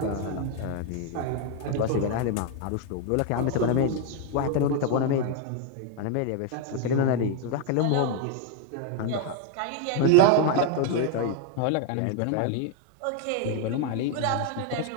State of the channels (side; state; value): both; different; correlation 0.01